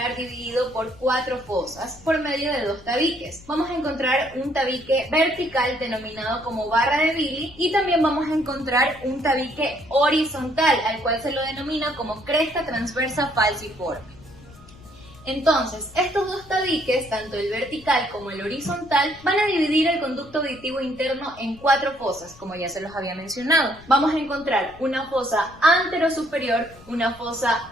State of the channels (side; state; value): left; noise; rumble, 22 dB below the sound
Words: dividido por 4 fosas por medio de 2 tabiques. Vamos a encontrar un tabique vertical denominado como barra de Billy y también vamos a encontrar un tabique horizontal al cual se lo denomina como cresta transversa falciforme. Entonces, estos 2 tabiques, tanto el vertical como el horizontal, van a dividir el conducto auditivo interno en 4 fosas, como ya se los había mencionado. Vamos a encontrar una fosa anterosuperior, una fosa